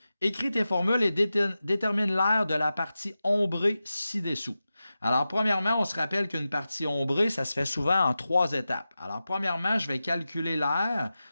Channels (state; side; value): inverted; both; correlation -0.93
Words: Écris tes formules et détermine l'aire de la partie ombrée ci-dessous. Alors, premièrement, on se rappelle qu'une partie ombrée, ça se fait souvent en 3 étapes. Alors, premièrement, je vais calculer l'aire